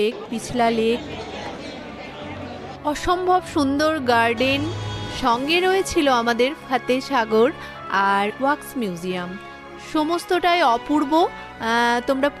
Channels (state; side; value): identical; both; correlation 1.00